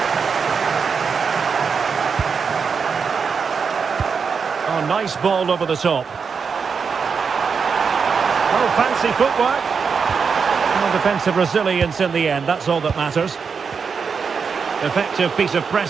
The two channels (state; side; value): quieter; left; 5.8 dB